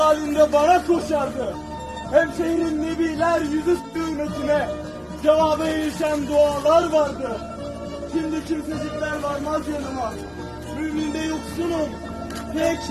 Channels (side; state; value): both; identical; correlation 1.00